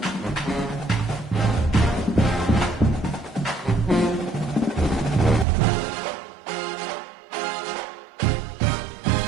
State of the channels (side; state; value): left; drops out; at 5.5 s